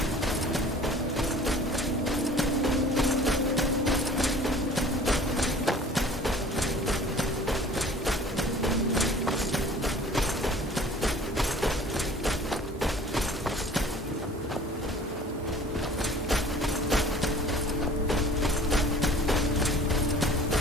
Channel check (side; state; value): both; normal; correlation 0.48